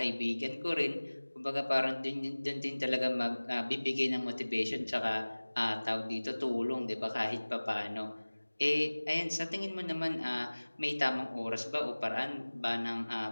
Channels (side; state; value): both; inverted; correlation -1.00